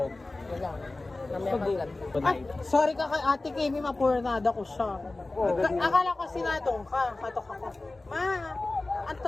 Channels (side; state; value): right; quieter; 3.1 dB